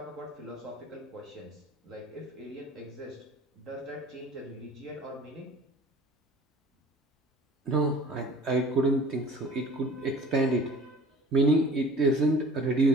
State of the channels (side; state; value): both; normal; correlation 0.45